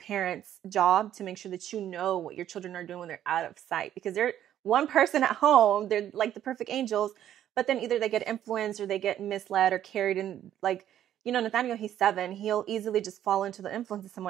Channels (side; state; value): left; quieter; 11.2 dB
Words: job to make sure that you know what your children are doing when they're out of sight, because they're one person at home, they're like the perfect angels, but then either they get influenced or they get misled or carried in. Like, you know, Nathaniel, he's 7, he'll easily just fall into the influence of